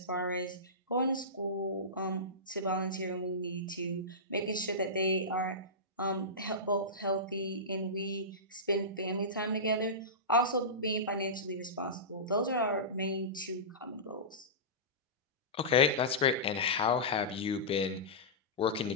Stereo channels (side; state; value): both; normal; correlation -0.18